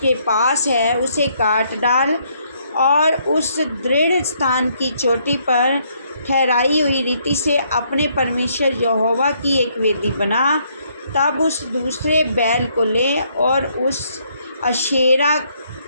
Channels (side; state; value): both; inverted; correlation -0.70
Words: पास है उसे काट डाल, और उस दृढ़ स्थान की चोटी पर ठहराई हुई रीति से अपने परमेश्वर यहोवा की एक वेदी बना। तब उस दूसरे बैल को ले और उस अशेरा